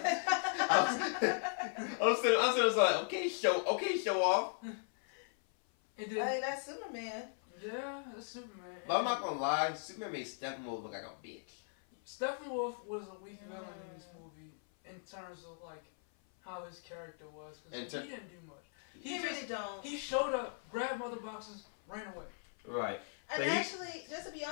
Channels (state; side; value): silent; right; 53 dB below the other